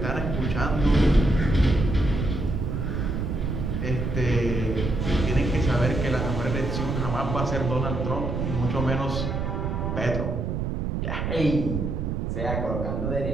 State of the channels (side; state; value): right; noise; rumble, 2 dB below the sound